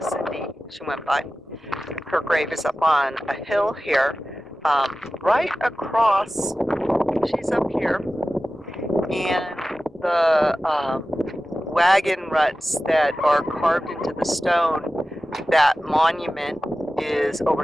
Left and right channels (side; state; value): both; normal; correlation 0.95